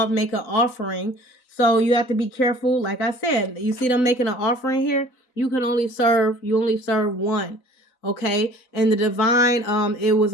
make an offering. So you have to be careful. Like I said, you see them making an offering here, you only serve one. Okay, and the divine, it was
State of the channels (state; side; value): late; right; 4.0 ms